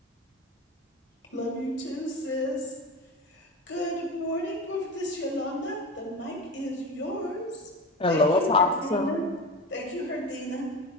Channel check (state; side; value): normal; both; correlation 0.26